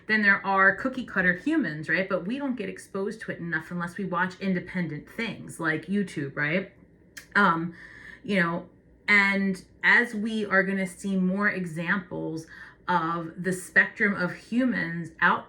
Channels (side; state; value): both; identical; correlation 1.00